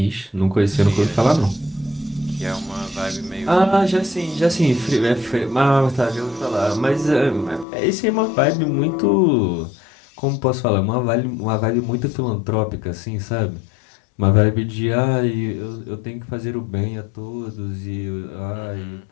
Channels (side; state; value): right; drops out; at 7.7 s